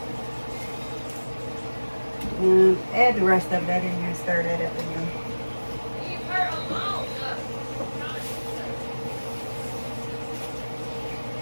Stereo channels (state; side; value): inverted; both; correlation -1.00